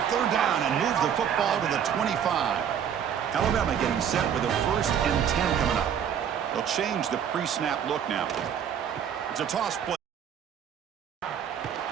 third down and move the football to the 25. Alabama getting set with a 1st and 10 coming up. They'll change the pre-snap look now. It's a toss play.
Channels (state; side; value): quieter; left; 8.5 dB